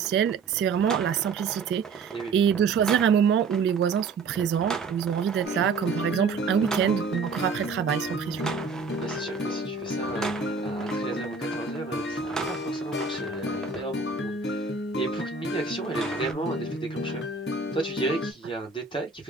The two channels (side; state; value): left; quieter; 4.7 dB